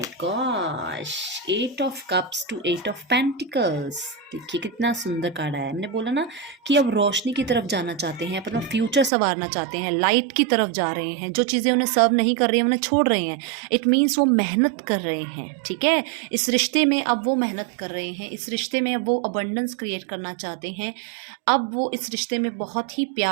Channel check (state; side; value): drops out; left; at 9.1 s